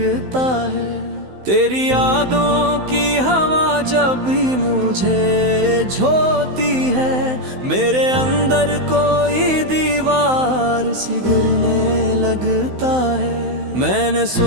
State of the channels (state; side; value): late; left; 16 ms